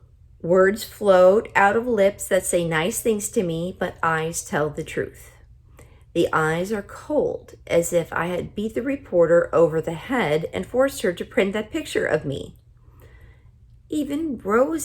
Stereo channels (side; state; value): both; identical; correlation 1.00